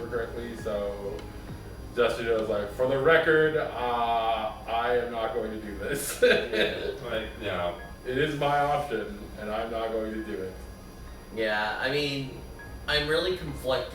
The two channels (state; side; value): identical; both; correlation 1.00